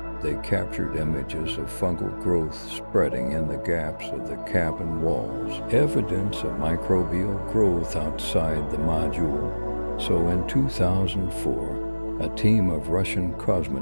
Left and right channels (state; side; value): inverted; both; correlation -1.00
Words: they captured images of fungal growth spreading in the gaps of the cabin walls, evidence of microbial growth outside the module. So in 2004, a team of Russian